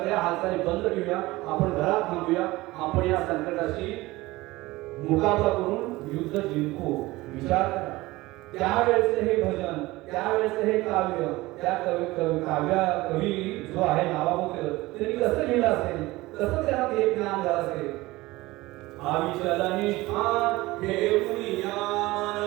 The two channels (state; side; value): quieter; left; 19.7 dB